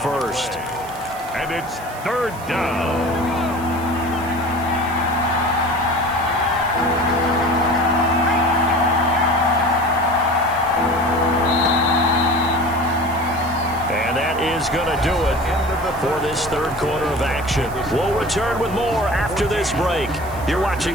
And it's third down. And that is going to do it for this third quarter of action. We'll return with more after this break. You're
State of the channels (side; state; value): right; noise; hiss, 19 dB below the sound